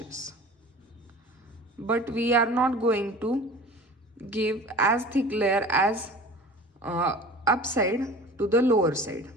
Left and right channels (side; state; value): both; normal; correlation 0.40